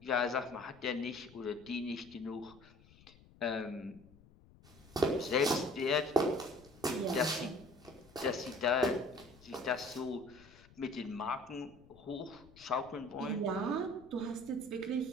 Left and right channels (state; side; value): noise; left; rumble, 24 dB below the sound